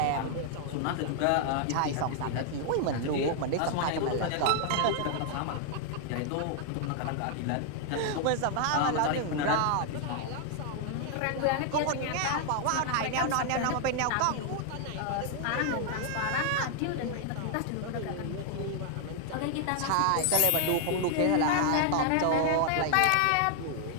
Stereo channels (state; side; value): different; both; correlation 0.00